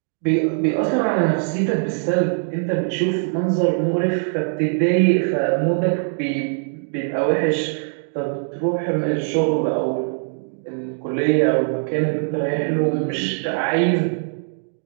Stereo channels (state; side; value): silent; left; digital silence